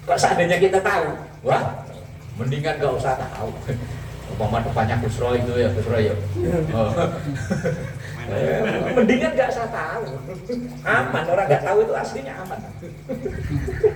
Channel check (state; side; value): identical; both; correlation 1.00